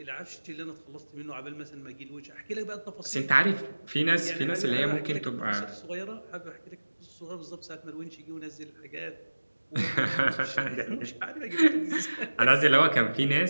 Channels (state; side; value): inverted; both; correlation -1.00